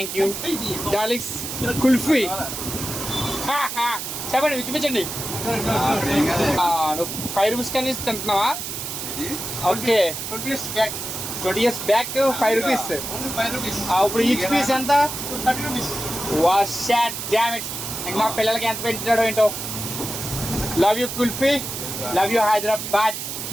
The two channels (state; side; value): noise; right; hiss, 6 dB below the sound